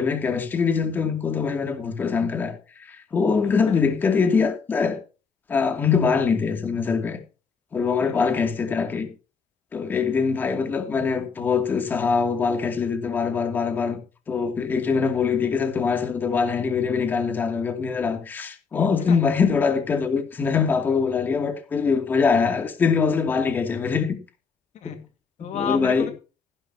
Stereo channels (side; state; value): right; quieter; 5.2 dB